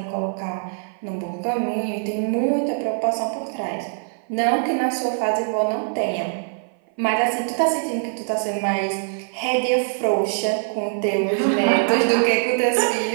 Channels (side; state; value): left; silent; 56 dB below the other